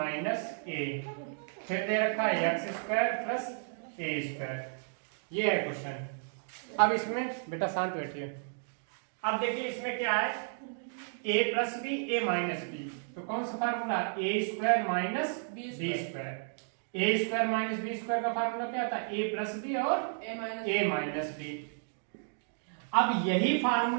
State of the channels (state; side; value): silent; left; digital silence